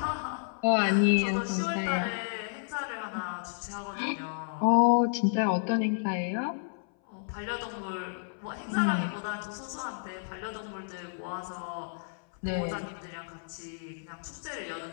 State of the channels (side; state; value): right; silent; 57 dB below the other